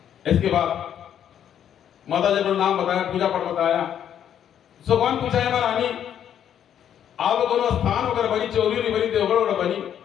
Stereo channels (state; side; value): quieter; right; 9.6 dB